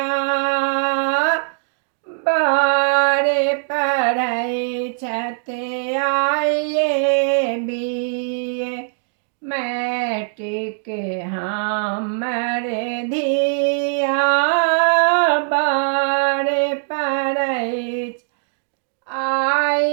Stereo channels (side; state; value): left; silent; digital silence